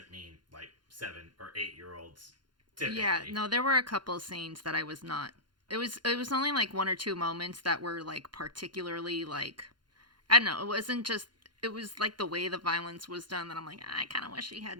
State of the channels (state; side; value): late; left; 0.71 ms